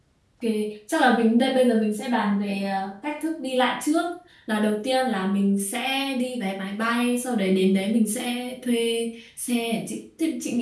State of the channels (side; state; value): both; identical; correlation 1.00